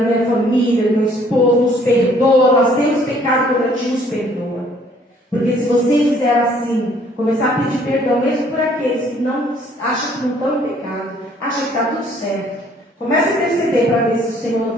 família, do meu esposo. Nos perdoa. Nós temos pecado contra ti, nos perdoa. Porque se você fizer assim, começar a pedir perdão, mesmo por aqueles que não acham que não estão em pecado, acham que está tudo certo, comece a interceder para ver se o Senhor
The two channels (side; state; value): both; normal; correlation 0.60